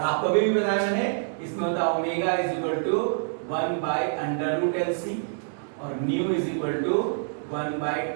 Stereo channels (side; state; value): left; silent; digital silence